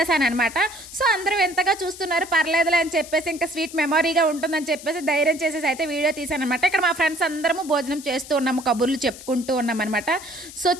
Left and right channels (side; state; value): left; noise; hiss, 15 dB below the sound